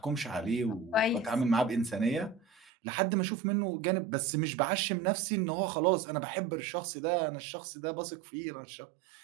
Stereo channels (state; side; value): drops out; left; at 2.7 s